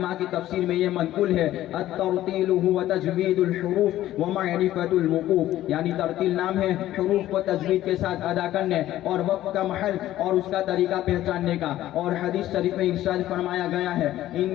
کی تفسیر میں یہ منقول ہے الترتیل هو تجوید الحروف ومعرفت الوقوف، یعنی ترتیل نام ہے حروف کو تجوید کے ساتھ ادا کرنے اور وقت کا محل اور اس کا طریقہ پہچاننے کا. اور حدیث شریف میں ارشاد فرمایا گیا ہے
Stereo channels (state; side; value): quieter; right; 14.0 dB